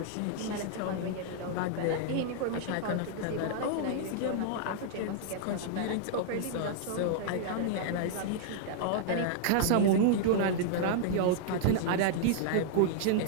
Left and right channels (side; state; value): both; different; correlation -0.01